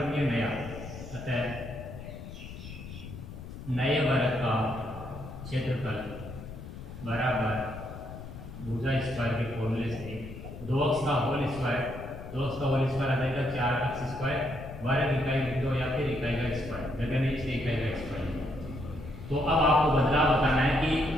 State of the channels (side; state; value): left; noise; rumble, 12 dB below the sound